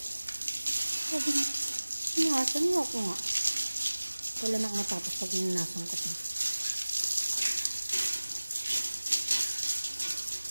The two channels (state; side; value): inverted; both; correlation -1.00